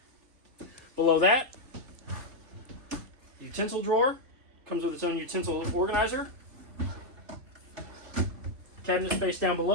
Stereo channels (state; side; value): late; left; 3.4 ms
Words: Below that, utensil drawer. Comes with its own utensil organizer. Cabinet space down